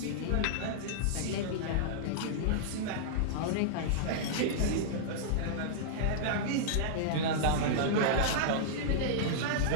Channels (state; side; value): different; both; correlation -0.02